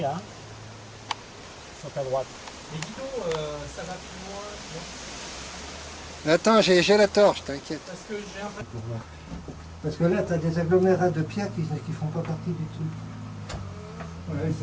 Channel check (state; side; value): identical; both; correlation 1.00